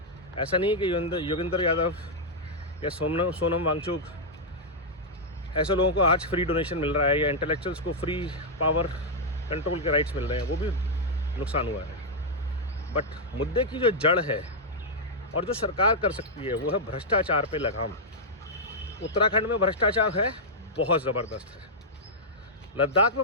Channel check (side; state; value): both; normal; correlation -0.05